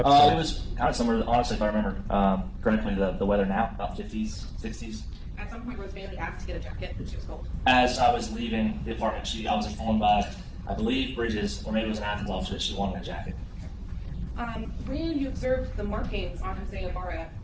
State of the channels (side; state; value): both; identical; correlation 1.00